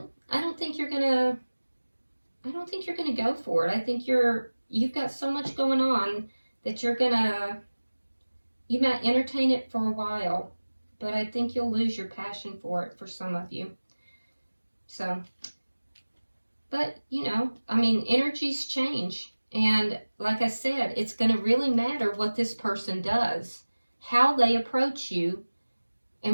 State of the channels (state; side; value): inverted; both; correlation -1.00